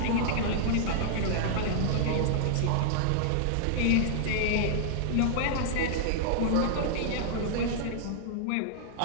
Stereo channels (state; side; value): different; both; correlation -0.01